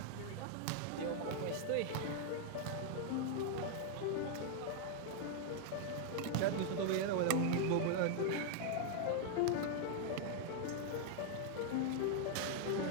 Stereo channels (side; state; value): both; different; correlation -0.01